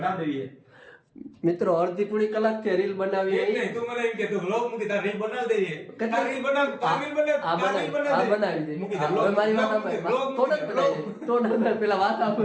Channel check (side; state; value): both; identical; correlation 1.00